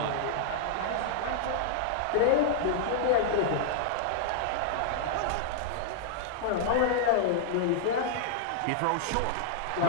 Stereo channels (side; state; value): both; different; correlation -0.01